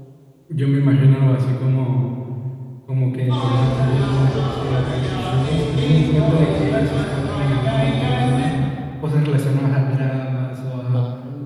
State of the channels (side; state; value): both; identical; correlation 1.00